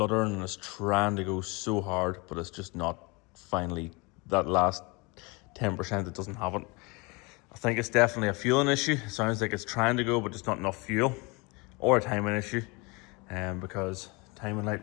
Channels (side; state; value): right; quieter; 27.4 dB